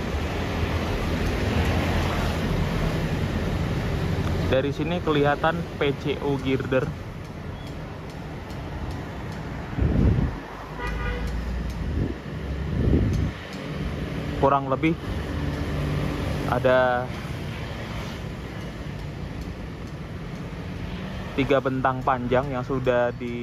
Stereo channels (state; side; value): identical; both; correlation 1.00